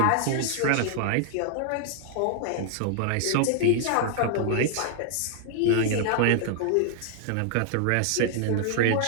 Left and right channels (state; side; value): different; both; correlation 0.00